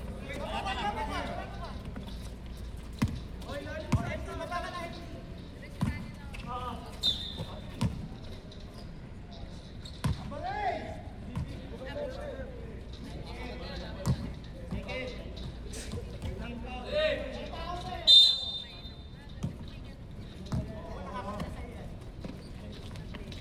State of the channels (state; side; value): identical; both; correlation 1.00